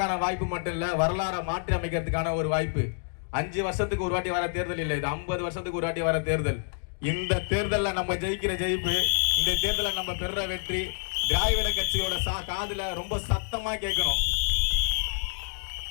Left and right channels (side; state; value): right; silent; digital silence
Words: வாய்ப்பு மட்டும் இல்ல, வரலாறை மாற்றி அமைக்கிறதுக்கான ஒரு வாய்ப்பு. 5 வருஷத்துக்கு ஒரு வாட்டி வர தேர்தல் இல்லை, இது 50 வருஷத்துக்கு ஒரு வாட்டி வர தேர்தல். இந்த தேர்தலில் நம்ம ஜெயிக்கிற ஜெயிப்பு, இந்த தேர்தலில் நம்ம பெற வெற்றி திராவிட கட்சியோட காதுல ரொம்ப சத்தமா கேட்கணும்.